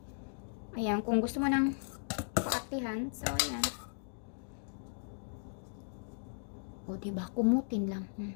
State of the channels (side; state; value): right; silent; digital silence